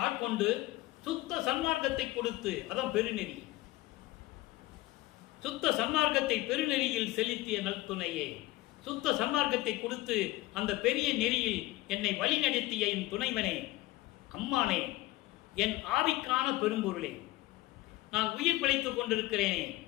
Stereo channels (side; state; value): right; quieter; 18.6 dB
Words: ஆட்கொண்டு சுத்த சன்மார்க்கத்தை கொடுத்து, அதான் பெருநெறி, சுத்த சன்மார்க்கத்தை பெருநெறியில் செலுத்திய நற்துணையே. சுத்த சன்மார்க்கத்தை கொடுத்து அந்த பெரிய நெறியில் என்னை வழி நடத்திய என் துணைவனே, அம்மானே, என் ஆவிக்கான பெரும்பொருளே, நான் உயிர் பிழைத்துக் கொண்டிருக்கிறேனே,